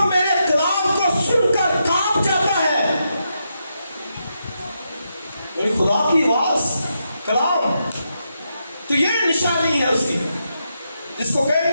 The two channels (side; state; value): both; inverted; correlation -0.83